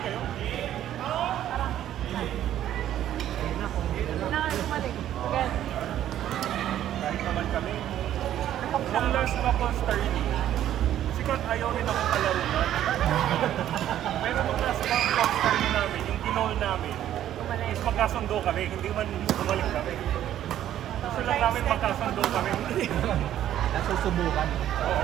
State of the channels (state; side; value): quieter; left; 11.7 dB